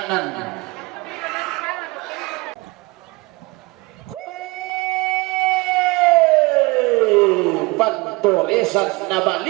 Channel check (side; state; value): left; quieter; 25.3 dB